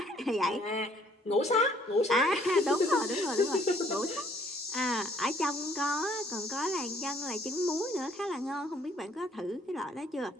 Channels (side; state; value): both; normal; correlation 0.62